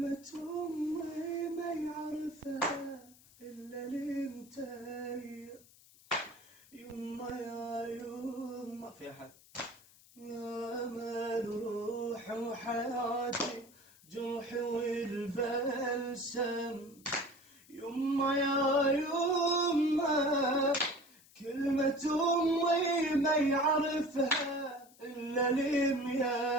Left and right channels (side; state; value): left; noise; hiss, 25 dB below the sound